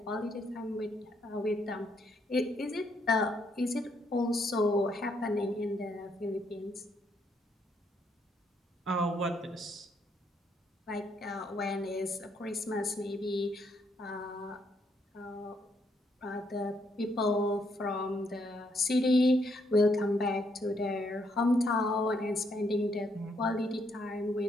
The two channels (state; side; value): normal; both; correlation 0.74